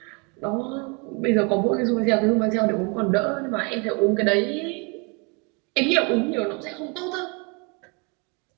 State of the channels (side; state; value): left; quieter; 31.4 dB